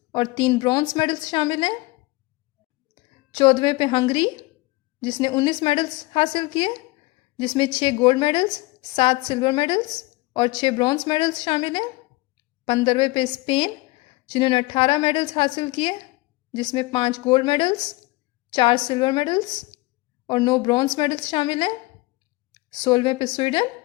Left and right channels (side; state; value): right; quieter; 22.2 dB